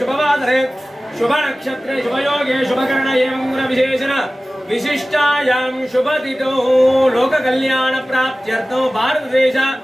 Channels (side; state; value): both; normal; correlation 0.97